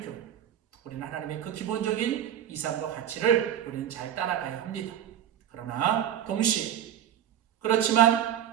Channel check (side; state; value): left; quieter; 10.2 dB